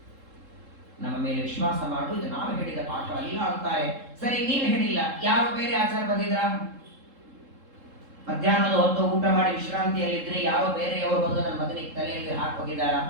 ನಮ್ಮ ಮೇಲೆ ವಿಶ್ವಾಸ ಮಾಡು, ಇದು ನಾವು ಹೇಳಿದ ಪಾಠ ಅಲ್ಲ ಅಂತಾರೆ. ಸರಿ, ನೀನು ಹೇಳಿಲ್ಲ, ಯಾರು ಬೇರೆ ಆಚಾರ ಬಂದಿದ್ರ? ಮಧ್ಯಾಹ್ನದ ಹೊತ್ತು ಊಟ ಮಾಡಿ ವಿಶ್ರಾಂತಿಯಲ್ಲಿದ್ರೆ ಯಾರೋ ಬೇರೆಯವರು ಬಂದು ನನ್ನ ಮಗನಿಗೆ ತಲೆಯಲ್ಲಿ ಹಾಕೋಗಿದ್ದಾರ?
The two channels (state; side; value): late; left; 3.7 ms